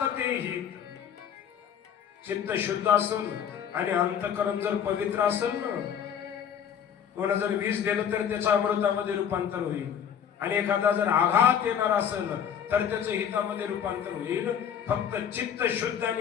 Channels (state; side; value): quieter; right; 8.5 dB